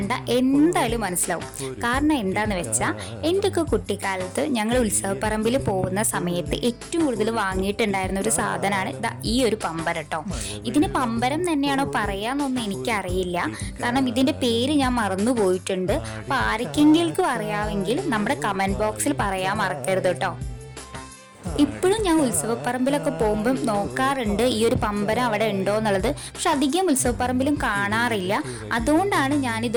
എന്തായാലും മനസ്സിലാവും. കാരണം എന്താന്ന് വെച്ചാൽ എൻ്റെയൊക്കെ കുട്ടിക്കാലത്ത് ഞങ്ങൾ ഉത്സവപ്പറമ്പിൽ പോകുന്ന സമയത്ത് ഏറ്റവും കൂടുതൽ വാങ്ങിയിട്ടുണ്ടായിരുന്ന ഒരു സാധനമാണ് ഈ ഒരു പമ്പരം കേട്ടോ. ഇതിന് പമ്പരം തന്നെയാണോ പറയാന്നൊന്നും എനിക്കറിയില്ല, കാരണം ഇതിൻ്റെ പേര് ഞാൻ മറന്നു പോയിട്ടുണ്ട്. അപ്പോൾ ആർക്കെങ്കിലും അറിയാമെങ്കിൽ നമ്മുടെ കമൻറ്റ് ബോക്സിൽ പറയാൻ മറക്കരുത് കേട്ടോ. ഇപ്പോഴും ഞാൻ ഉത്സവപ്പറമ്പിലൊക്കെ പോകുമ്പം നോക്കാറുണ്ട് ഈ ഒരു പമ്പരം അവിടെ ഉണ്ടോ എന്നുള്ളത്. പക്ഷെ അധികം ഉത്സവപ്പറമ്പിലും കാണാറില്ല. അതുകൊണ്ടാണ്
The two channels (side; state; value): both; identical; correlation 1.00